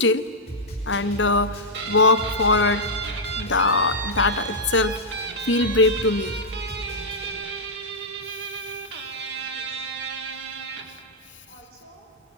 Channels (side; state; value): both; normal; correlation -0.07